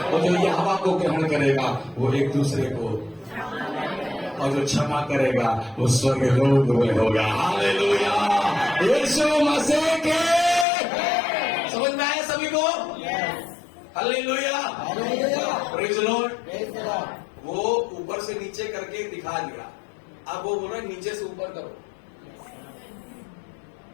जो यहोवा को ग्रहण करेगा वो एक दूसरे को, और जो क्षमा करेगा वो स्वर्ग लोक में होगा। हालेलुया। यीशु मसीह के। समझ में आया सभी को? हालेलुया। Praise the Lord. वो ऊपर से नीचे करके दिखा दिया। अब वो बोल रहे नीचे से ऊपर करो।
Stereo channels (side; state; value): right; drops out; at 10.7 s